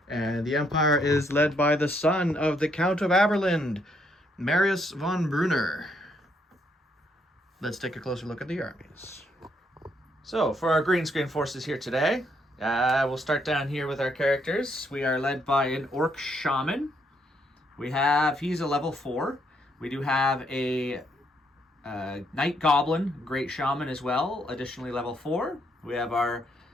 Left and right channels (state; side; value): normal; both; correlation 0.73